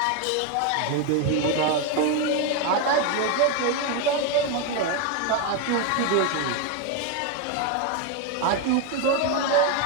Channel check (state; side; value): different; both; correlation 0.02